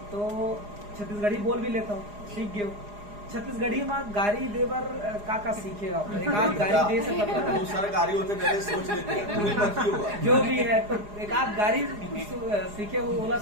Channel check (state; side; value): late; left; 4.9 ms